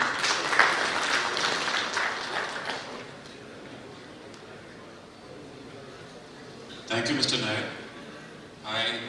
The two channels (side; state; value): both; identical; correlation 1.00